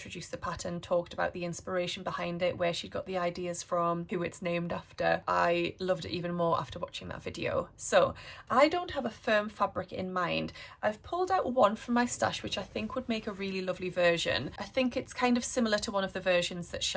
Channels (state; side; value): identical; both; correlation 1.00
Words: the pattern, talked about the inspiration behind it, where she got the ideas from, who it's named after. I loved it even more after watching that video. So I don't have a firm fabric in mind. I've pulled out one from my stash which I think would make a really lovely version. I think it's kind of similar to one of the versions that